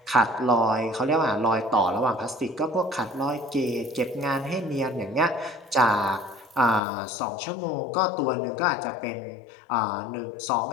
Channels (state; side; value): drops out; right; at 6.8 s